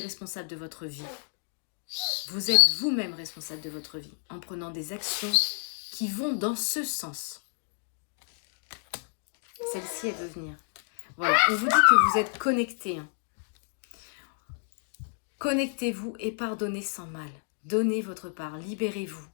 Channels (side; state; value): right; silent; digital silence